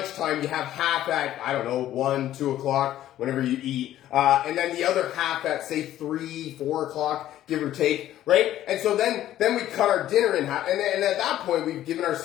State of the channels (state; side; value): quieter; right; 12.8 dB